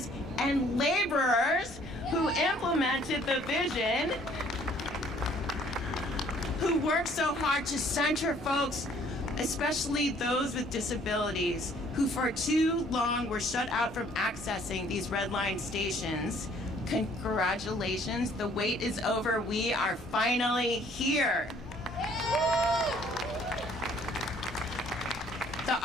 and laborers who implemented the vision, who worked so hard to center folks, especially those with disabilities, who for too long were shut out from accessing these Red Line stations. Congratulations, the wait is over. We are finally here. The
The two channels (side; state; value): both; normal; correlation 0.59